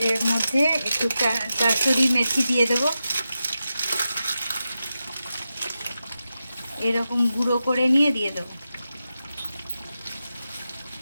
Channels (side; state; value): both; inverted; correlation -0.91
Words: এর মধ্যে একটু কাসুরি মেথি দিয়ে দেবো, এরকম গুঁড়ো করে নিয়ে দিয়ে দেবো।